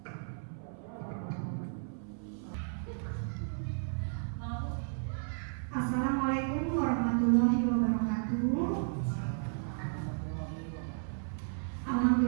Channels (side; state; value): left; silent; 55 dB below the other